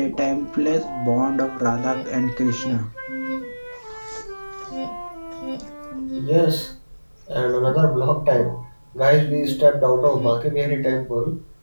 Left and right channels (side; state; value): both; inverted; correlation -1.00